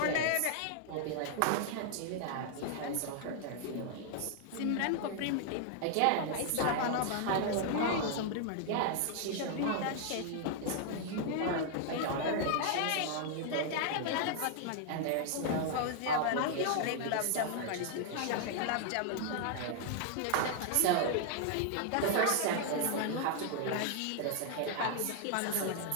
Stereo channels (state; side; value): different; both; correlation 0.00